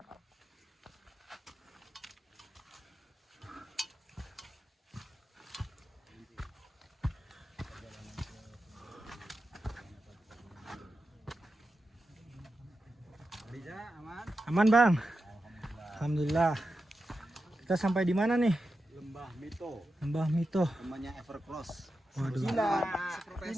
Bisa, aman. Aman, Bang. Alhamdulillah. Kita sampai di mana nih? Lembah Mito, Lembah Mito. namanya Evercross. Waduh. Cina.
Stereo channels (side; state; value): both; normal; correlation 0.90